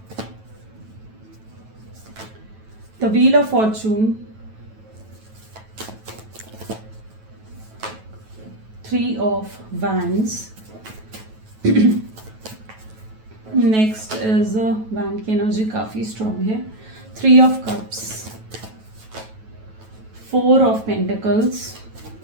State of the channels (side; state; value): left; late; 9.2 ms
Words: the wheel of Fortune, 3 of wands. Next is wand की एनर्जी काफी स्ट्रॉन्ग है। 3 of cups, 4 of pentacles,